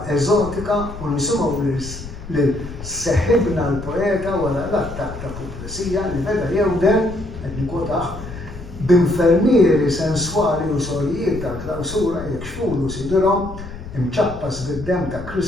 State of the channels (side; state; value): left; noise; rumble, 12 dB below the sound